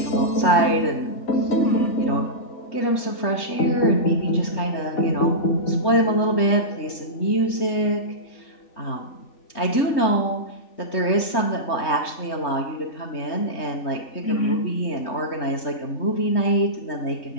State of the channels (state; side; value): late; right; 3.4 ms